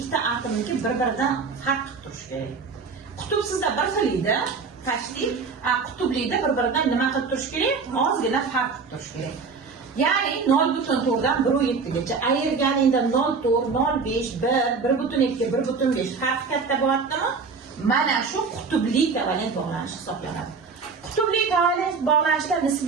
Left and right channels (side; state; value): left; quieter; 4.9 dB